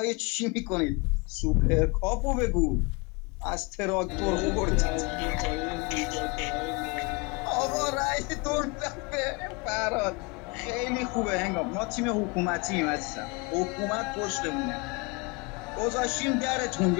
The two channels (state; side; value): quieter; right; 28.3 dB